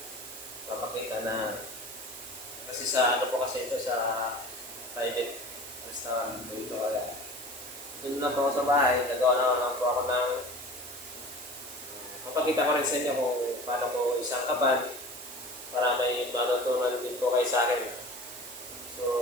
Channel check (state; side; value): noise; right; hiss, 12 dB below the sound